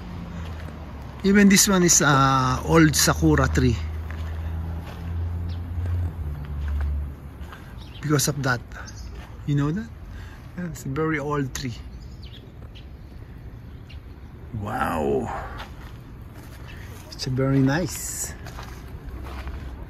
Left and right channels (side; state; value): both; identical; correlation 1.00